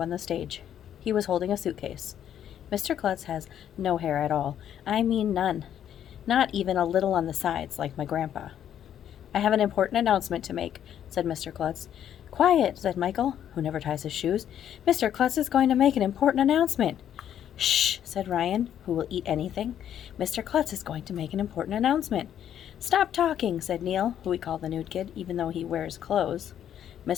the stage. He was holding a suitcase. Mr. Klutz has no hair at all. I mean none. Not even a little on the sides, like my grandpa. I have an important announcement to make, said Mr. Klutz. Quiet, said Michael, who never ties his shoes. Mr. Klutz is going to make an important announcement. Shh, said Ryan, who will eat anything. Mr. Klutz is going to make an important announcement. Stop talking, said Neil, who we call the nude kid, even though he wears clothes.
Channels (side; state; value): right; quieter; 10.0 dB